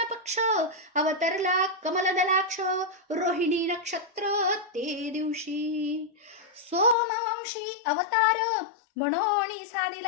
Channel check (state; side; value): drops out; right; at 7.0 s